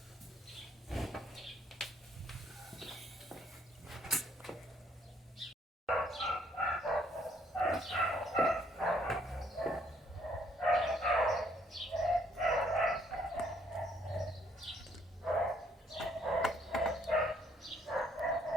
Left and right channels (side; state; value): both; normal; correlation 0.66